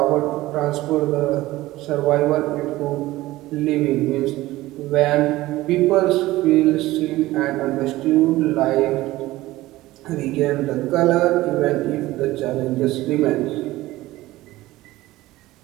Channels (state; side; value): quieter; left; 17.5 dB